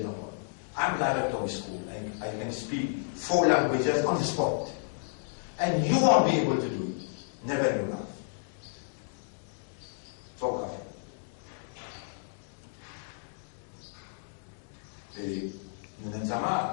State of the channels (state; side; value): silent; right; digital silence